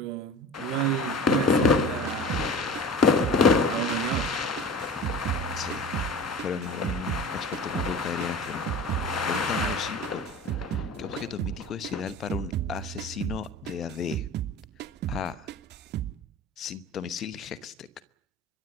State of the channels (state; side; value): normal; both; correlation 0.37